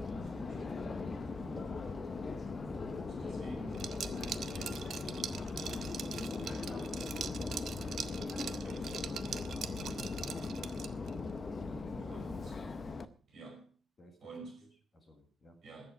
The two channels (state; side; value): normal; both; correlation 0.82